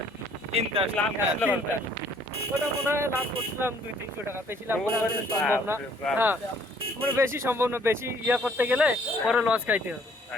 তিনটা লাভ হ্যাঁ, আসলে তিনটা। ওটা মনে হয় লাভ করছিলাম 200-300 টাকা, বেশি লাভ করা আসলে সম্ভব না। হ্যাঁ, মানে বেশি সম্ভব না, বেশি ইয়া করতে গেলে পরে লস খাইতে হবে।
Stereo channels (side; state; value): both; normal; correlation 0.61